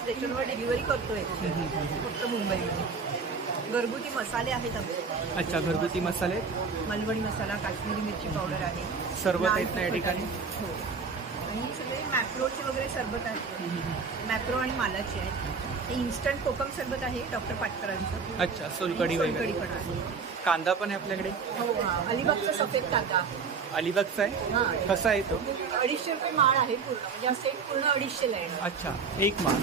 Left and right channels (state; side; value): quieter; left; 5.2 dB